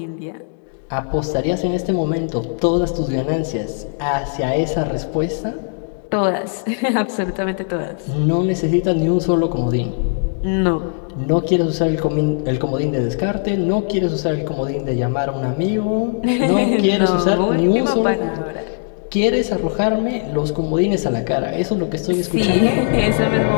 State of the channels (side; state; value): right; silent; 64 dB below the other